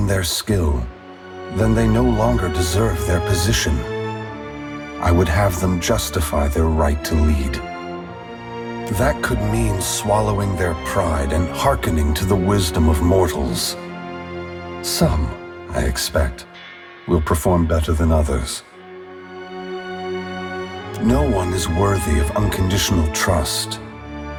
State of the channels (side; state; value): both; identical; correlation 1.00